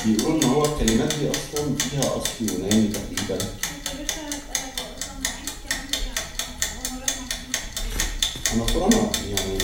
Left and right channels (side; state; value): both; identical; correlation 1.00